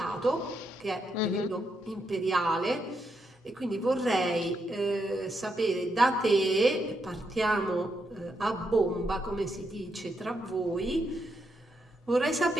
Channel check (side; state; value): both; normal; correlation 0.81